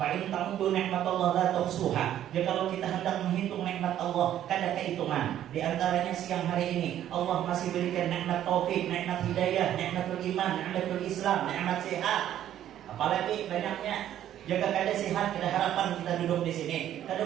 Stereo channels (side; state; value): left; quieter; 11.5 dB